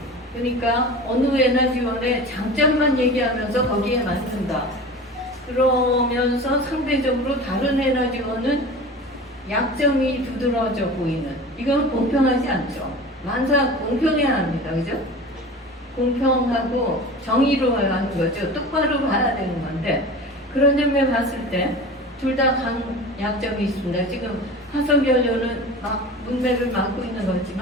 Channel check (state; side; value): normal; both; correlation 0.35